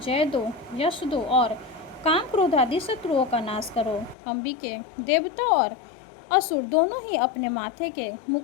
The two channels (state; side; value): drops out; right; at 4.2 s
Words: दो, यश दो और काम क्रोध आदि शत्रुओं का नाश करो। अंबिके, देवता और असुर दोनों ही अपने माथे के